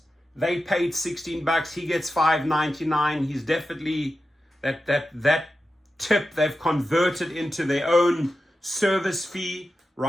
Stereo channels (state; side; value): normal; both; correlation 0.91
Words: They paid 16 bucks, he gets $5.99. He's definitely that tip they've converted into their own service fee,